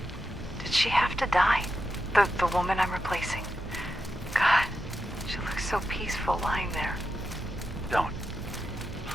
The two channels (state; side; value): normal; both; correlation 0.88